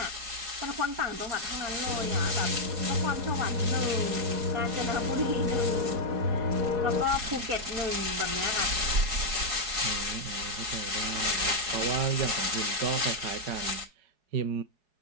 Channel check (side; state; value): left; late; 4.8 ms